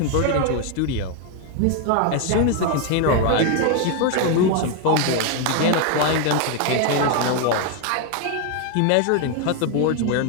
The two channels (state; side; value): different; both; correlation 0.01